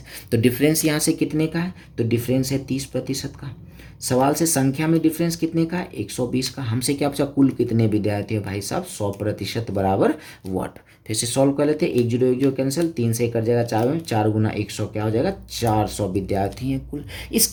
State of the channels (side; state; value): both; identical; correlation 1.00